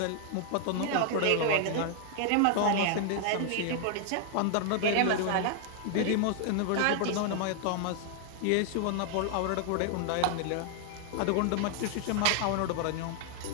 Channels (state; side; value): different; both; correlation 0.00